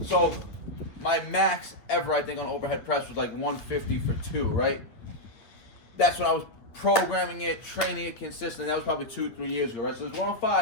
So my max ever, I think, on overhead press was like 150 for 2, right? That's when I was programming it, training it consistently. That was probably 2-3 years ago, right? So it's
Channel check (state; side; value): late; right; 8.7 ms